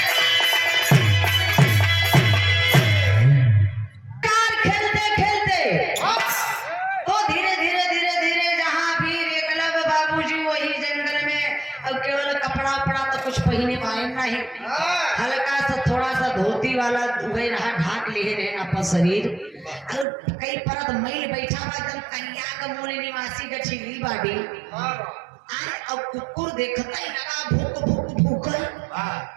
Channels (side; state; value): left; drops out; at 20.1 s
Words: कार खेलते खेलते तो धीरे धीरे धीरे धीरे जहाँ वीर एकलव्य बाबूजी वही जंगल में अब केवल कपड़ा उपड़ा तो कुछ पहने पाए नहीं हल्का सा थोड़ा सा धोती वाला वही रहा ढाक लिए रहे अपन शरीर और कई परत मैल बैठा हुआ एकदम कन्या का मूल निवासी का छिली बाटी अब कुकुर देखता ही लगा भूक भूक भूकर